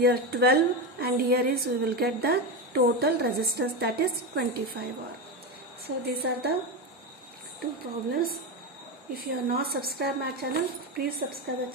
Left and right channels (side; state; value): both; normal; correlation 0.15